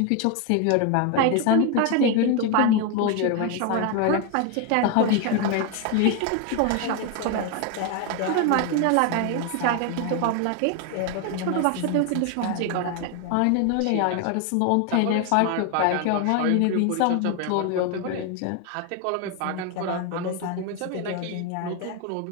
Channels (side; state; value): both; different; correlation 0.01